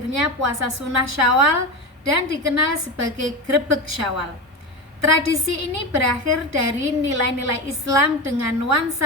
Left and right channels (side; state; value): both; normal; correlation 0.20